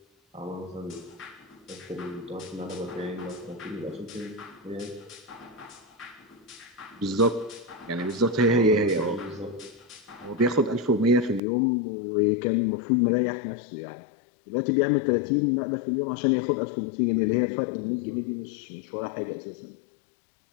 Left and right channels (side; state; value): right; drops out; at 11.4 s